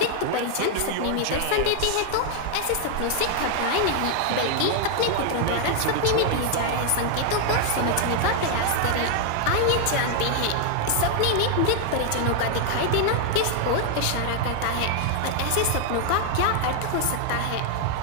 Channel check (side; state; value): both; different; correlation 0.00